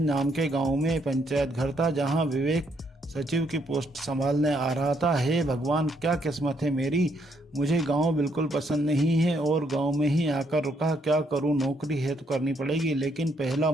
नाम के गांव में पंचायत घर था, जहां विवेक सचिव की पोस्ट संभालने आ रहा था। हे भगवान, क्या किस्मत है मेरी। मुझे गांव बिल्कुल पसंद नहीं है और गांव में ही आकर रुका। क्या करूं, नौकरी है तो करनी पड़ेगी, लेकिन पहला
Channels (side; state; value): both; normal; correlation 0.73